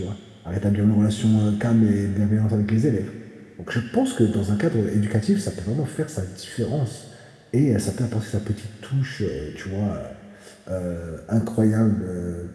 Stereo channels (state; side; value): identical; both; correlation 1.00